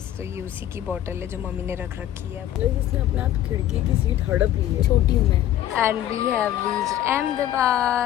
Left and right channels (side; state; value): right; quieter; 12.3 dB